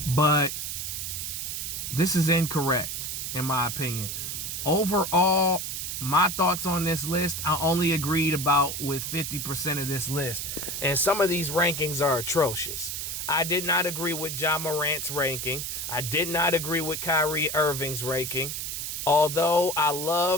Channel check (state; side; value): noise; right; hiss, 4 dB below the sound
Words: But this is incorrect, in my opinion. Overall, my thoughts on this list, I only agreed about with 50% of this list. And some of these rankings are atrocious. I did not agree with Ja Morant's ranking. I did not agree with Kyrie Irving's ranking. Although I